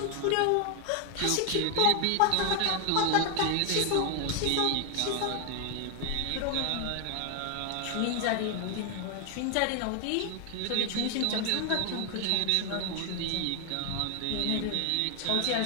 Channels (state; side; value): different; both; correlation 0.01